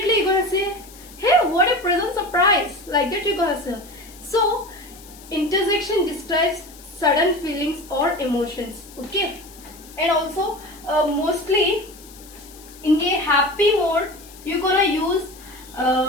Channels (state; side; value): noise; left; hiss, 20 dB below the sound